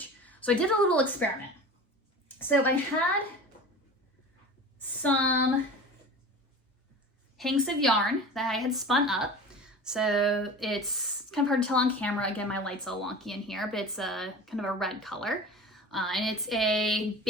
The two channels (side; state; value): both; normal; correlation 0.36